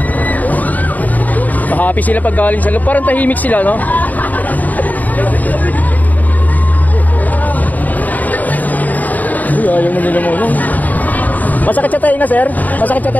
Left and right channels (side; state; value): right; late; 0.079 ms